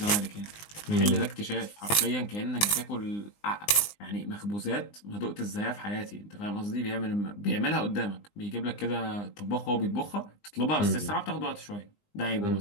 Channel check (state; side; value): late; right; 20 ms